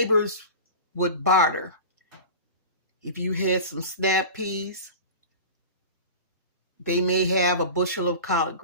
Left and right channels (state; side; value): inverted; both; correlation -0.33